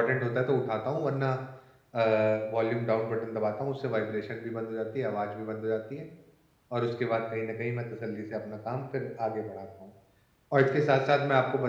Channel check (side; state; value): both; identical; correlation 1.00